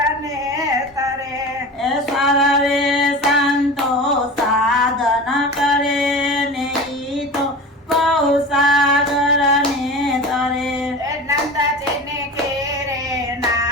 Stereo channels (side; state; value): both; normal; correlation 0.33